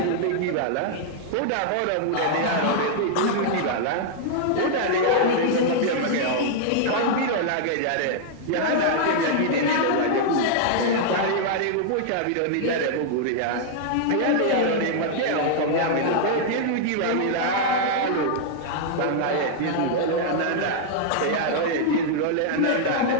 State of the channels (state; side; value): different; both; correlation -0.01